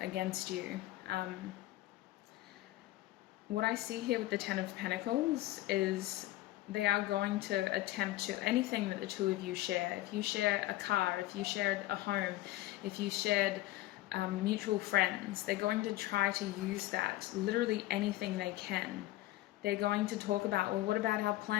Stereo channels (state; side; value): quieter; right; 16.8 dB